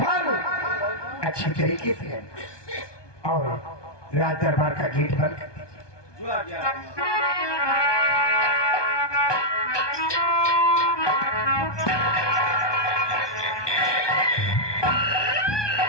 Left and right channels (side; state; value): right; late; 1.2 ms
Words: अच्छी तरीके से है, और राज दरबार का गेट बंद कर दीजिए।